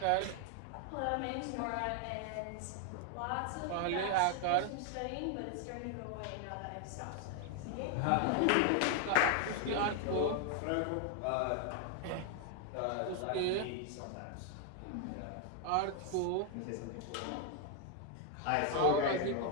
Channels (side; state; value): both; different; correlation 0.00